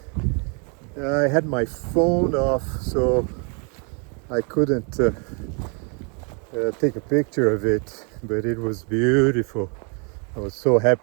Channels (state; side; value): quieter; left; 35.9 dB